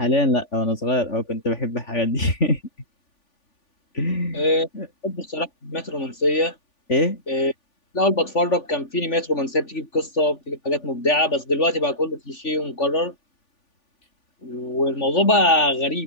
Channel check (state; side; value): late; right; 3.5 ms